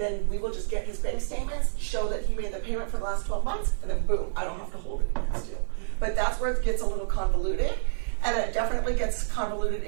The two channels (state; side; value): silent; left; digital silence